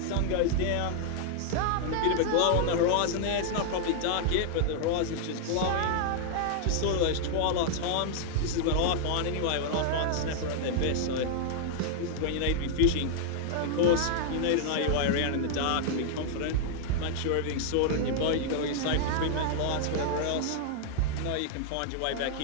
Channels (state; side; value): different; both; correlation -0.01